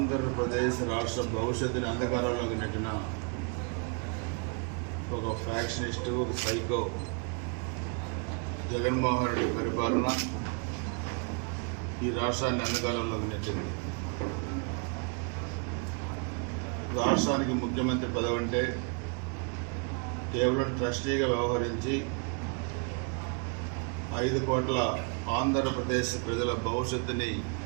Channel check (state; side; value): quieter; left; 36.9 dB